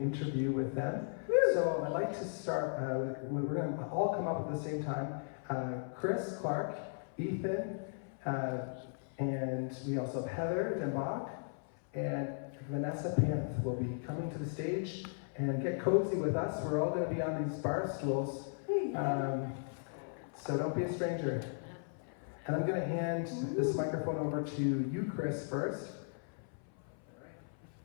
with them. So I'd like to start, we're going to all come up at the same time. Chris Clark, Ethan, and we also have Heather Denbach, and Vanessa Panth will be coming to the stage and get cozy with us. We're all going to be on these bar stools. So don't be a stranger. And I'm going to hand this microphone over to you, Chris, first.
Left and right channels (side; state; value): right; silent; 53 dB below the other